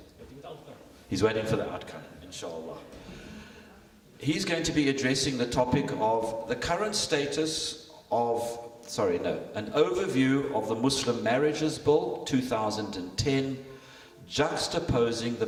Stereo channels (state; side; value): identical; both; correlation 1.00